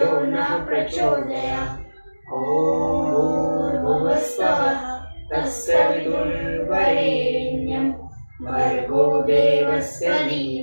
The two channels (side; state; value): both; inverted; correlation -1.00